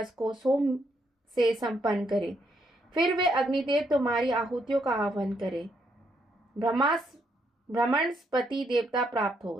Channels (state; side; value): normal; both; correlation 0.75